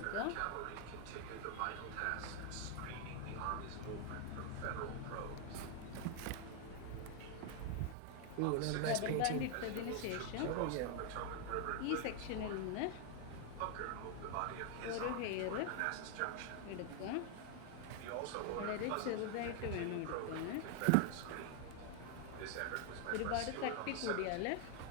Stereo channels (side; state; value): both; different; correlation 0.00